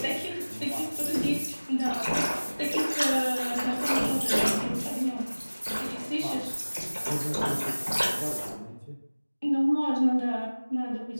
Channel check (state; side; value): inverted; both; correlation -1.00